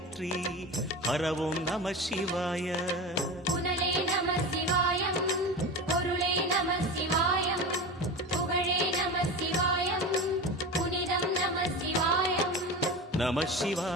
ஹரவும் நம சிவாய. புனலே நம சிவாயம், பொருளே நம சிவாயம், புகழே நம சிவாயம், புனிதம் நம சிவாயம். நம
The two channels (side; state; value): both; normal; correlation 0.28